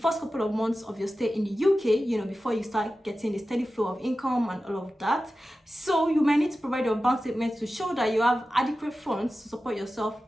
couple of months of your stay in the UK, before you start getting a steady flow of income and all of that. So you might need to provide your bank statement to show that you have adequate funds to support yourself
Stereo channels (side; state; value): both; normal; correlation 0.94